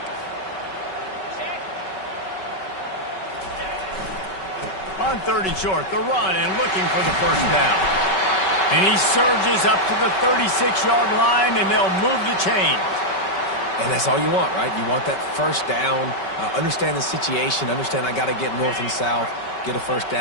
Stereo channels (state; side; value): late; right; 5.3 ms